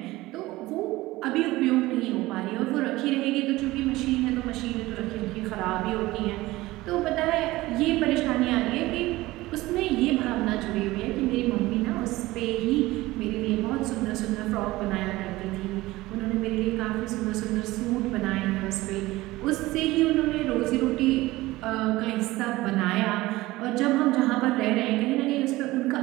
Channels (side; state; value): left; quieter; 18.7 dB